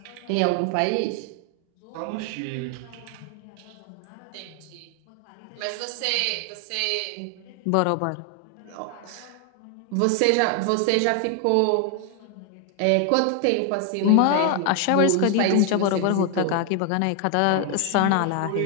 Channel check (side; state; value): both; different; correlation 0.00